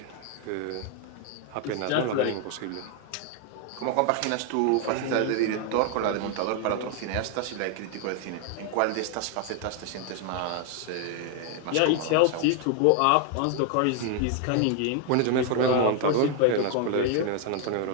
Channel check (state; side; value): different; both; correlation 0.01